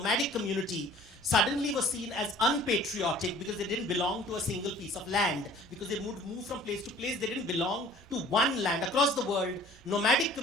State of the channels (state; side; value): noise; right; hum, 25 dB below the sound